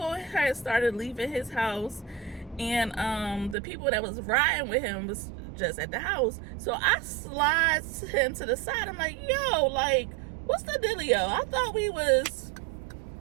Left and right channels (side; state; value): left; drops out; at 3.6 s